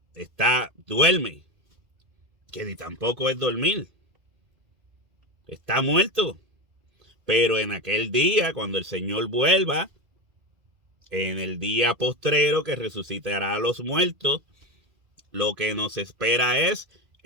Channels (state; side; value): late; left; 2.3 ms